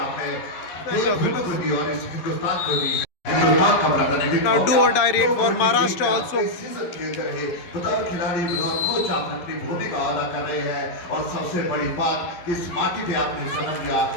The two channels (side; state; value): right; late; 11 ms